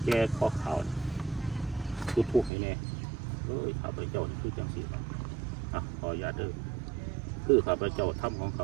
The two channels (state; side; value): drops out; left; at 2.5 s